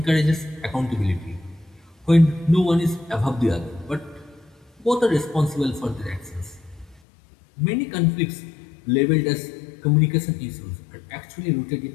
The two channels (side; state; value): right; drops out; at 7.0 s